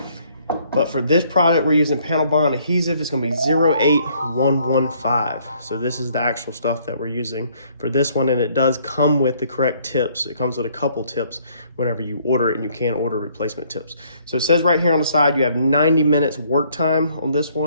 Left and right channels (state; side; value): inverted; both; correlation -0.64